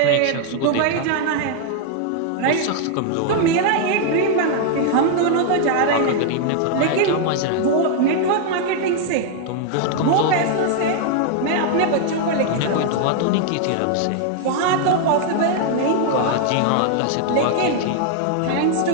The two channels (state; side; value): different; both; correlation 0.00